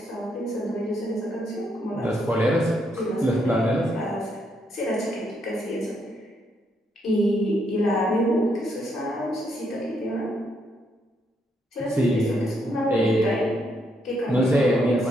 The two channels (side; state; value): both; normal; correlation 0.76